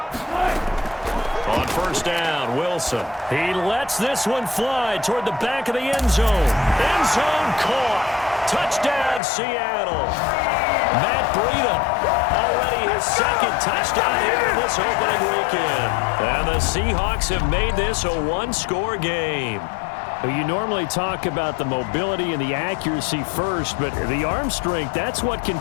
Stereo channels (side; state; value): right; drops out; at 9.2 s